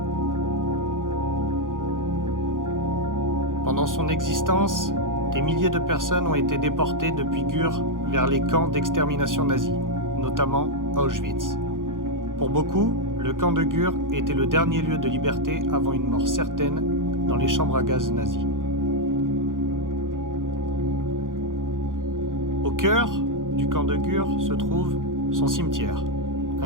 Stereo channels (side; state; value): left; late; 0.89 ms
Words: Pendant son existence, des milliers de personnes ont été déportées depuis Gurs vers les camps d'extermination nazis, notamment Auschwitz. Pour beaucoup, le camp de Gurs était le dernier lieu de liberté avant une mort certaine dans les chambres à gaz nazies. Au cœur du camp de Gurs se trouve son cimetière,